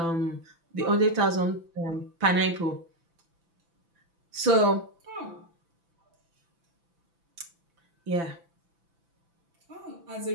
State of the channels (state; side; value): late; left; 6.0 ms